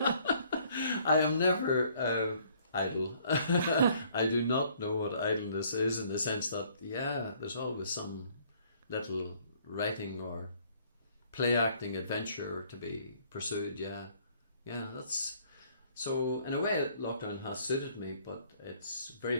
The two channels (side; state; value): both; inverted; correlation -0.61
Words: am never idle. I do not know what idleness is, in the sense that, there's always some little writing or play acting adventure to be pursued. That's so, in a way, lockdown has suited me, but it's very